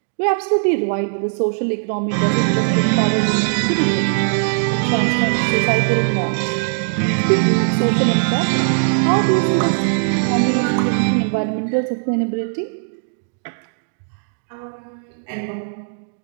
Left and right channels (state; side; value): silent; left; digital silence